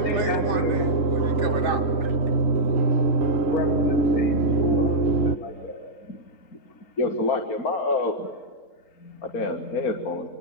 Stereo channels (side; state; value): right; late; 3.7 ms